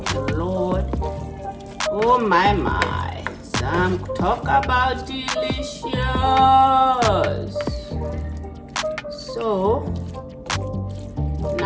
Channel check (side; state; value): both; identical; correlation 1.00